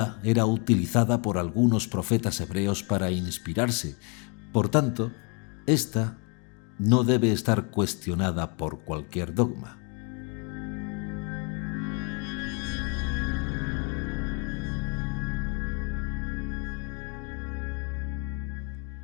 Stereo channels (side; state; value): right; quieter; 35.3 dB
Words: era utilizada por algunos profetas hebreos para inspirarse. Por tanto, esta no debe estar cuestionada por cualquier dogma.